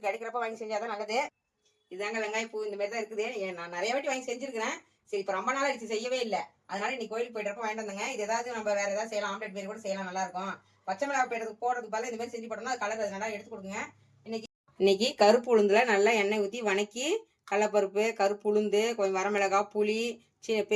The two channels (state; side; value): identical; both; correlation 1.00